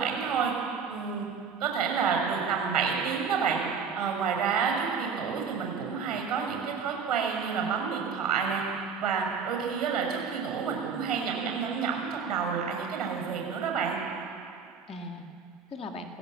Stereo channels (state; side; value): quieter; left; 5.9 dB